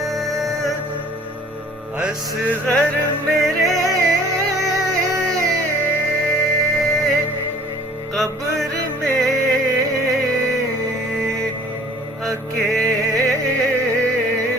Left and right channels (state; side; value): normal; both; correlation 0.51